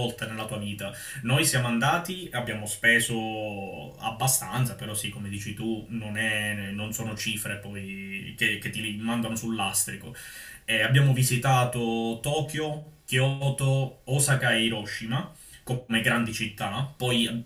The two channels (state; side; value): identical; both; correlation 1.00